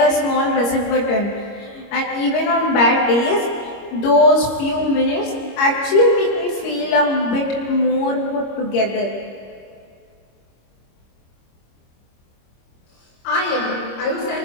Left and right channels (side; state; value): right; late; 25 ms